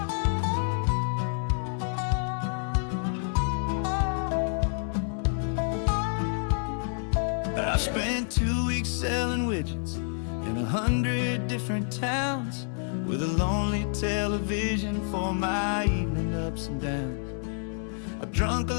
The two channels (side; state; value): right; silent; 59 dB below the other